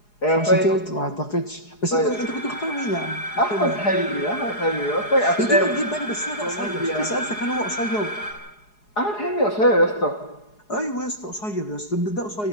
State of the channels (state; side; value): late; right; 4.8 ms